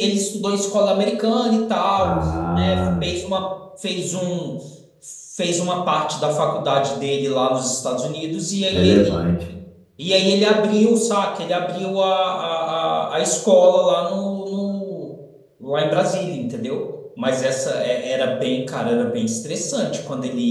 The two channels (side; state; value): both; identical; correlation 1.00